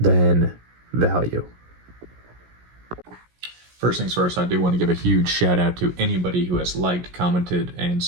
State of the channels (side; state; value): left; late; 17 ms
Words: value? First things first, I do want to give a huge shout out to anybody who has liked, commented, and